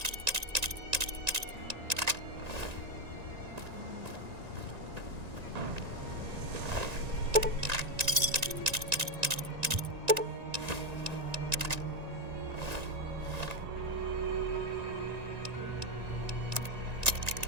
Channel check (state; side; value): late; left; 1.9 ms